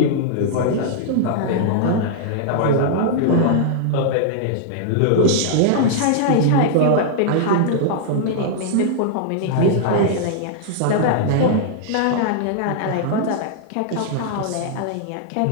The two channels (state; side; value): different; both; correlation -0.01